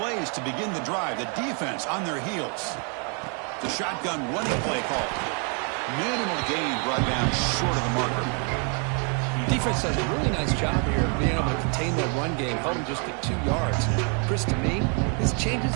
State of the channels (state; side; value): quieter; left; 38.5 dB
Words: to begin the drive. The defense on their heels. The shotgun running play call. Minimal gain brought down short of the marker. Defense does a really nice job here of being able to contain that run game, held him just at 2 yards. Chris, to me, this changes